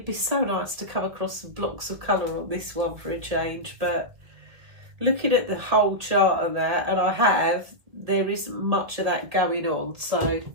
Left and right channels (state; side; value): late; left; 1.7 ms